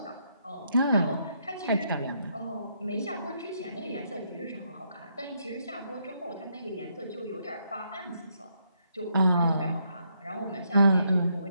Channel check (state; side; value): inverted; both; correlation -0.76